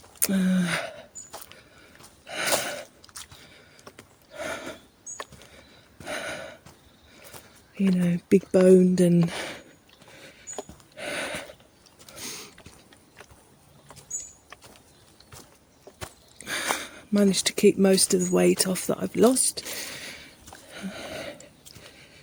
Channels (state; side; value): identical; both; correlation 1.00